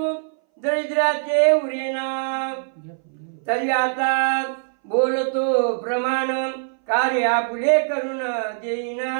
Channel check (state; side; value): silent; left; 61 dB below the other